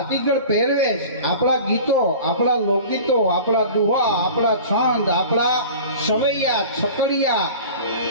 પહેરવેશ, આપણા ગીતો, આપણા લોકગીતો, આપણા દુહા, આપણા છંદ, આપણા સવૈયા, છકડિયા,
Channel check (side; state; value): both; inverted; correlation -0.40